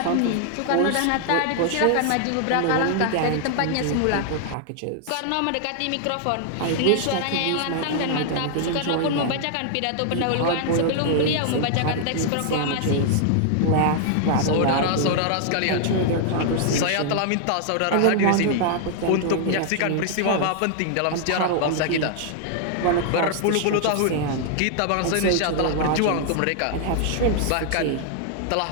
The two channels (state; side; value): different; both; correlation 0.00